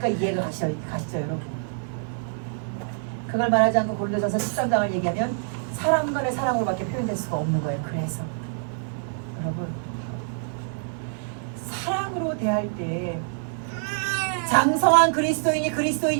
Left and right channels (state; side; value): silent; left; digital silence